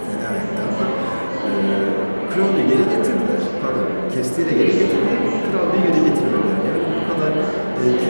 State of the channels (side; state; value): both; inverted; correlation -1.00